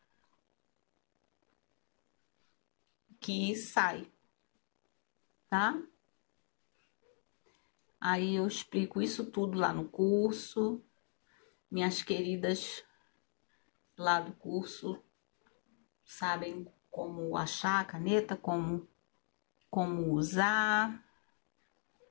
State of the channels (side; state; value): right; silent; 51 dB below the other